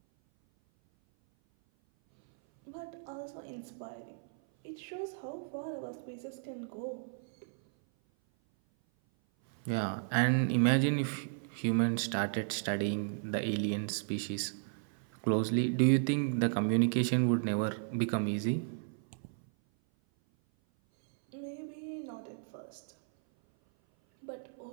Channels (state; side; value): silent; left; 55 dB below the other